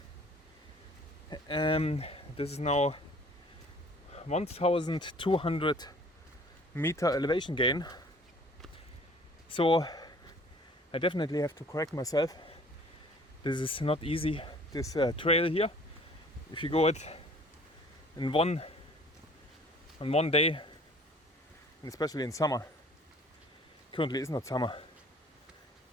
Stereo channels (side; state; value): both; normal; correlation 0.52